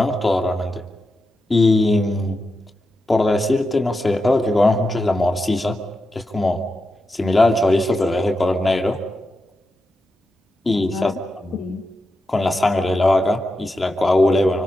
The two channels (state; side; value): normal; both; correlation 0.89